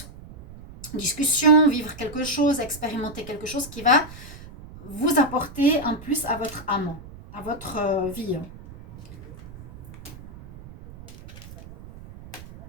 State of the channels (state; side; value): noise; right; rumble, 16 dB below the sound